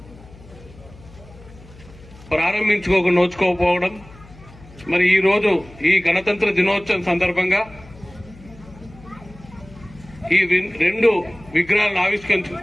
నోచుకోకపోవడం, మరి ఈ రోజు ఈ గణతంత్ర దినోత్సవం సందర్భంగా ఈ రెండు విగ్రహాలను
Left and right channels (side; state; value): left; noise; hum, 21 dB below the sound